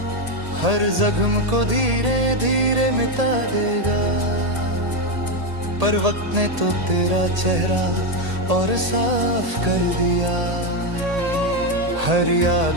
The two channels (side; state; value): left; late; 1.8 ms